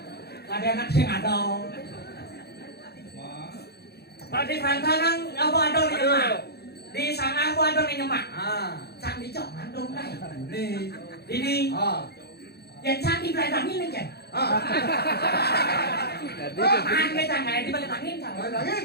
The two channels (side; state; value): right; late; 0.47 ms